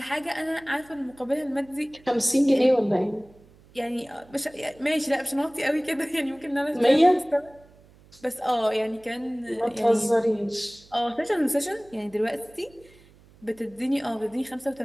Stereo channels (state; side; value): noise; right; hum, 27 dB below the sound